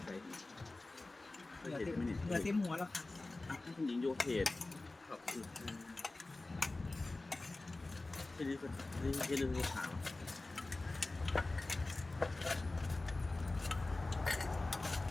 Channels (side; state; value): right; quieter; 3.1 dB